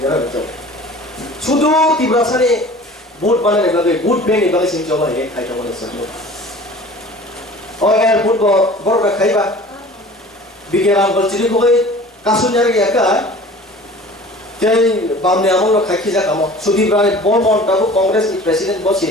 जारा बेखौ सुदु तिब्रासानि बुट बानायनाय बागै बुट बेनि बागै जों जमा हे खायथा माने सो ओ यार बुट बरफ खायबा बिगियान बलचिनि गय कासुन्यार याका जै बामने आमल खायखि जाकामो सुदिब्राय बलमन दाबो कांग्रेस नि प्रेसिडेंट बसि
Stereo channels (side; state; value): both; normal; correlation 0.43